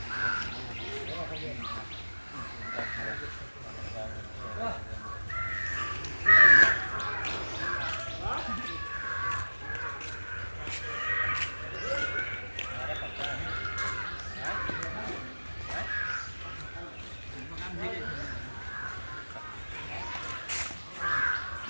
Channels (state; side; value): inverted; both; correlation -1.00